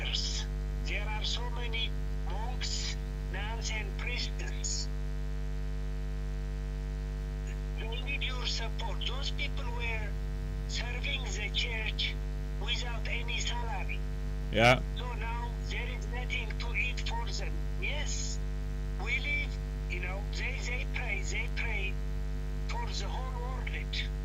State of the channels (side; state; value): both; identical; correlation 1.00